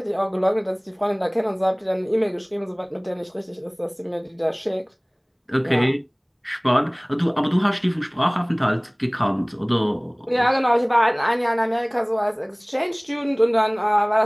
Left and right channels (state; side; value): identical; both; correlation 1.00